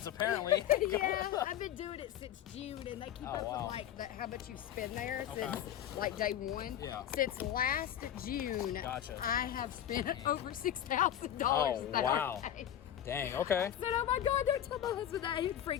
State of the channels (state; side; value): quieter; right; 10.7 dB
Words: apparently. Yeah, I've been doing it since June, and they keep up wow. with like how much you spend there Okay. since like day 1. Yeah. Since last June, Gotcha. I have spent over $6,000. Oh, that wow. day. Dang. Okay. I said, oh my God, don't tell my husband that. He'd